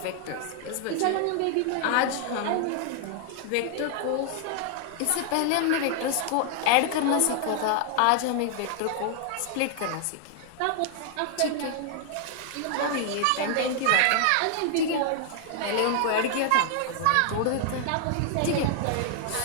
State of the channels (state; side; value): different; both; correlation 0.00